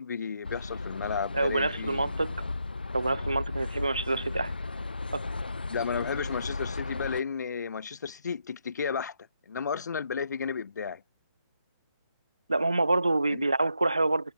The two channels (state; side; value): inverted; both; correlation -0.78